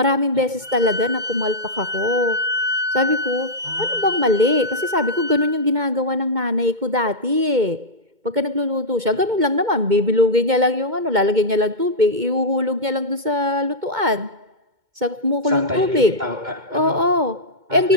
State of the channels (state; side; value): late; left; 2.2 ms